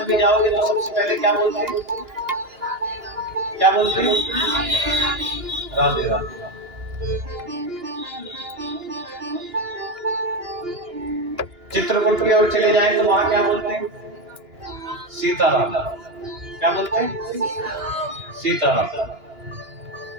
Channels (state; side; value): late; left; 2.9 ms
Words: में जाओगे तो सबसे पहले क्या बोलते हैं, क्या बोलते हैं? राधे राधे। चित्रकूट की ओर चले जाए तो वहां क्या बोलते हैं? सीताराम। क्या बोलते हैं? सीताराम।